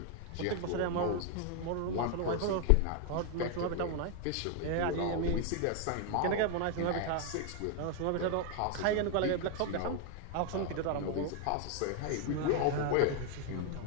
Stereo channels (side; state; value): both; different; correlation 0.00